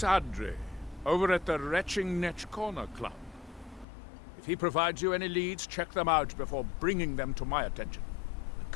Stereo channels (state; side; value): drops out; right; at 3.9 s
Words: over at the Retching Netch Corner Club. If he provides you any leads, check them out before bringing them to my attention. I